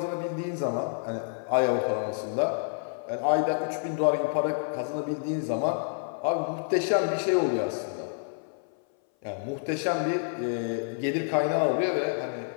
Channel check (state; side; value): silent; right; 57 dB below the other